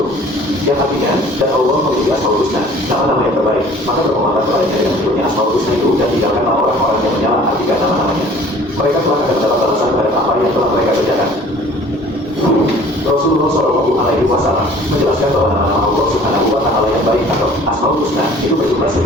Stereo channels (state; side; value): normal; both; correlation 0.50